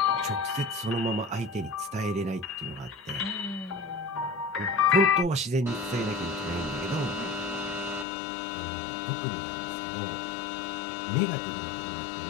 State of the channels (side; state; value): right; drops out; at 8.1 s